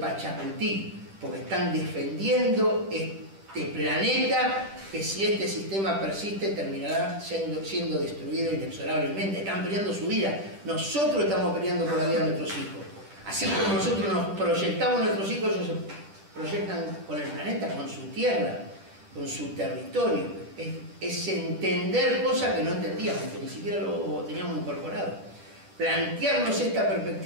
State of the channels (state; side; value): late; left; 10 ms